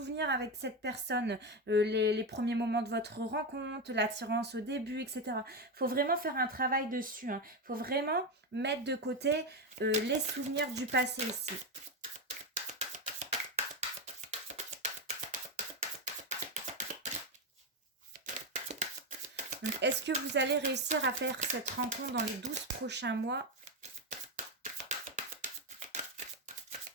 avec cette personne, les premiers moments de votre rencontre, l'attirance au début, etc. Il faut vraiment faire un travail dessus. Il faut vraiment mettre de côté les souvenirs du passé ici. Est-ce que vous allez réussir à faire cette rencontre dans les 12 prochains mois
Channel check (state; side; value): normal; both; correlation 0.11